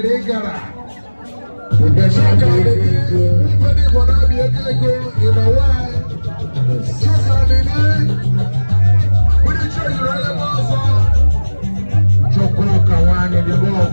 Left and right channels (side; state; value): both; inverted; correlation -1.00